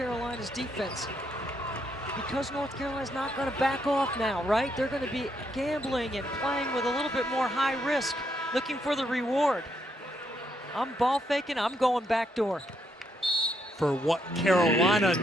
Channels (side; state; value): both; normal; correlation 0.76